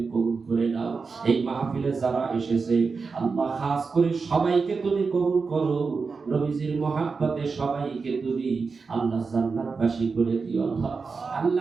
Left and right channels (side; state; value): left; quieter; 4.8 dB